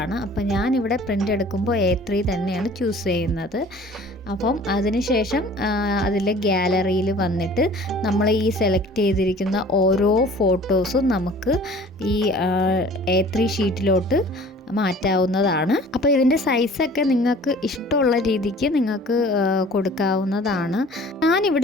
അപ്പം ഞാനിവിടെ പ്രിൻ്റ് എടുക്കുമ്പോൾ A3 തന്നെയാണ് ചൂസ് ചെയ്യുന്നത്. അപ്പം അതിനുശേഷം അതിൽ ഗാലറിയിൽ വന്നിട്ട് നമ്മൾ ഈ സെലക്ട് ചെയ്തിരിക്കുന്ന ഓരോ ഫോട്ടോസും നമുക്ക് ഈ A3 ഷീറ്റിലോട്ട് മാറ്റാവുന്നതാണ്. അപ്പോൾ ഇതിൻ്റെ സൈസൊക്കെ നിങ്ങൾക്ക് ഇഷ്ടമുള്ള രീതിക്ക് നിങ്ങൾക്ക് കൊടുക്കാവുന്നതാണ്.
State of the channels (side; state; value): both; normal; correlation 0.48